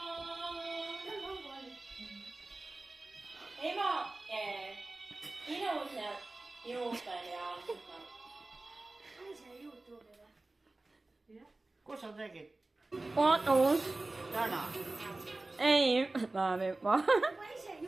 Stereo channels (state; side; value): quieter; left; 3.0 dB